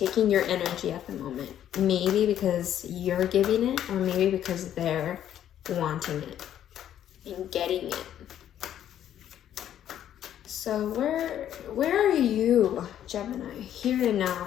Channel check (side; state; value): right; quieter; 10.7 dB